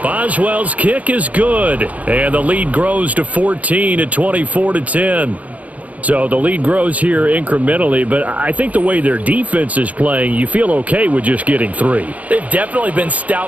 Boswell's kick is good, and the lead grows to 14 at 24-10. So the lead grows here incrementally, but I think the way their defense is playing, you feel okay with just getting 3. They've definitely been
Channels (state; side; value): late; left; 0.072 ms